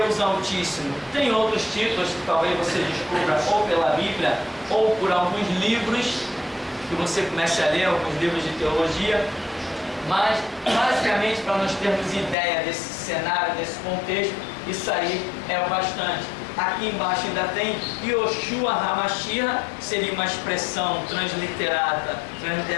Altíssimo. Tem outros títulos que talvez você descubra ou pela Bíblia ou por alguns livros que você comece a ler, alguns livros de teologia, mas basicamente, para nós termos ideia desse cenário, desse contexto, isso aí é o bastante. Aqui embaixo ainda tem Yoshua HaMashiach, seria uma expressão transliterada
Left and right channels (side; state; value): right; drops out; at 12.4 s